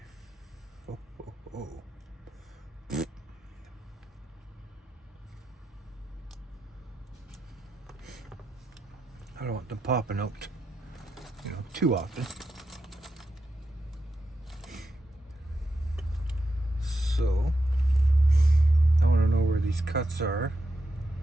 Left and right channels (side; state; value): both; normal; correlation 0.86